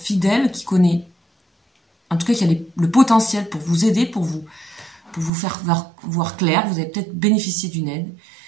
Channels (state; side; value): drops out; left; at 5.3 s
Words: qui connaît, en tout cas qui a le potentiel pour vous aider, pour vous faire voir clair. Vous avez peut-être bénéficié d'une aide.